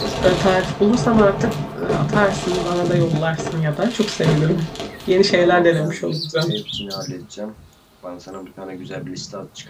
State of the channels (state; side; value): identical; both; correlation 1.00